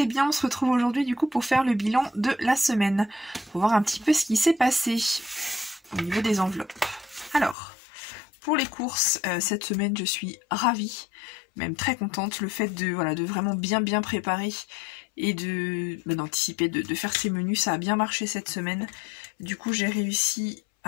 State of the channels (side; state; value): right; drops out; at 7.6 s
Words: bien. On se retrouve aujourd'hui du coup pour faire le bilan de la semaine. Pour voir un petit peu ce qui s'est passé au niveau des enveloppes. Alors, pour les courses, cette semaine je suis ravie, même très contente. Le fait de, voilà, de vraiment bien préparer et d'anticiper, de faire ces menus, ça a bien marché cette semaine. Du coup j'ai réussi